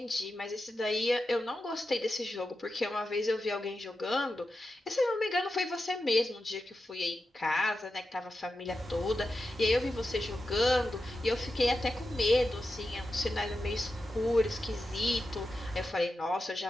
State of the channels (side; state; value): both; normal; correlation 0.90